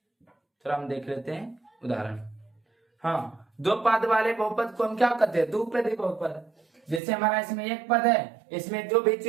थोड़ा हम देख लेते हैं उदाहरण। हाँ, दो पद वाले बहुपद को हम क्या कहते हैं? द्विपदी बहुपद। जैसे हमारा इसमें एक पद है, इसमें जो भी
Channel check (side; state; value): left; drops out; at 7.0 s